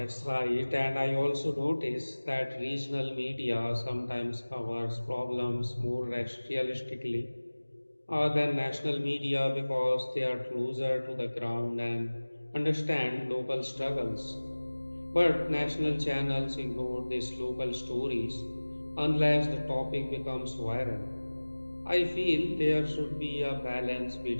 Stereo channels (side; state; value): both; inverted; correlation -1.00